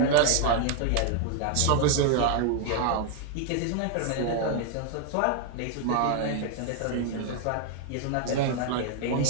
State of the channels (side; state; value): both; different; correlation 0.00